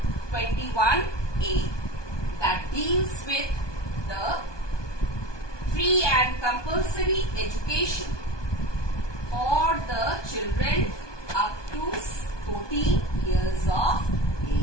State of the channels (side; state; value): right; late; 1.2 ms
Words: 21A that deals with the free and compulsory education for the children up to 14 years of